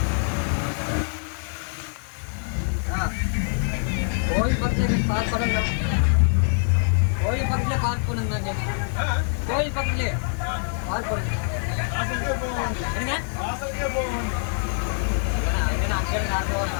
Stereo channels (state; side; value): silent; right; digital silence